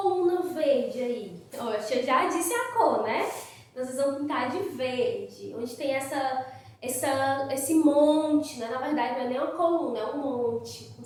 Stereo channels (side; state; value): both; identical; correlation 1.00